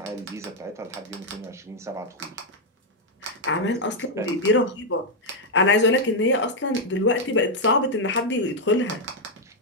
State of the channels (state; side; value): normal; both; correlation 0.00